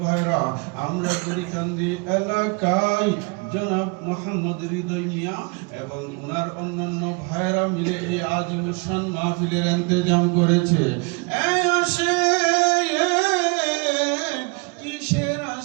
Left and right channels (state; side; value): quieter; left; 30.7 dB